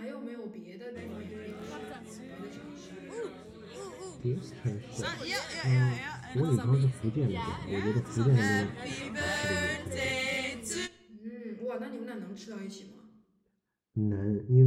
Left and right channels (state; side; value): identical; both; correlation 1.00